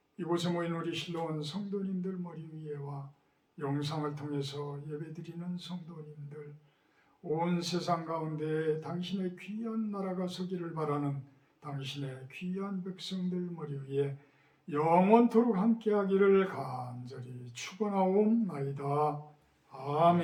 이곳에 모인 우리 실로원 성도님들 머리 위에와 영상을 통해서 예배드리는 성도님들, 온 세상 가운데 당신의 귀한 나라가 서기를 바라는 당신의 귀한 백성들 머리 위에 영원토록 함께하기를 간절히 축원하옵나이다.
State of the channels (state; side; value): identical; both; correlation 1.00